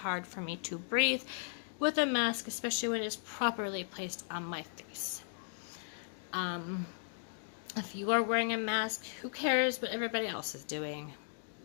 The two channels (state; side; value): silent; right; digital silence